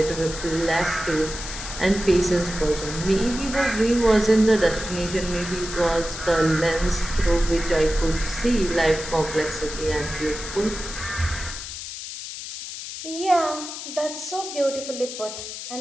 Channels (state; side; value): noise; left; hiss, 9 dB below the sound